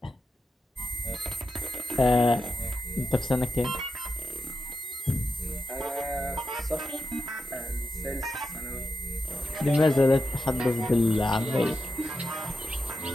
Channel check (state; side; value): normal; both; correlation 0.89